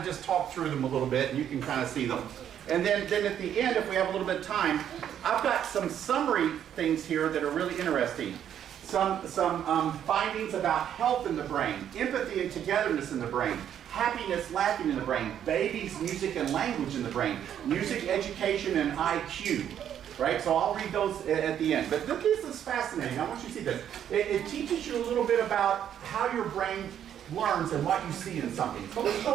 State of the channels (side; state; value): left; quieter; 9.7 dB